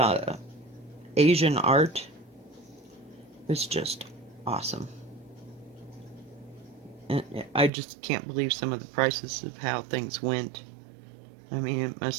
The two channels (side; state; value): left; drops out; at 7.7 s